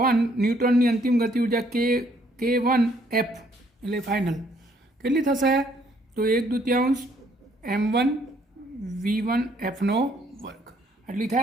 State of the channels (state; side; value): normal; both; correlation 0.66